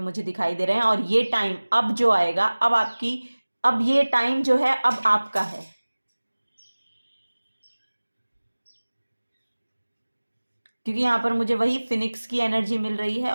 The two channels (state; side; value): inverted; both; correlation -1.00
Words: दिखाई दे रहे हैं। और ये टाइम अब जो आएगा, अब ये टाइम जो है अब आपका है। क्योंकि यहाँ पर मुझे वही फिनिक्स की एनर्जी मिल रही है।